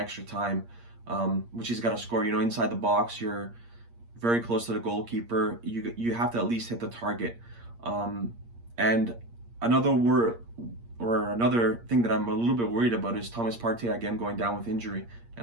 time, which he's got to score. You know, inside the box, you're very close to the goalkeeper. You have to at least hit the target. And another thing that I'm a little bit worried about is Thomas Partey again going down with injury,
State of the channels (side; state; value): left; late; 8.6 ms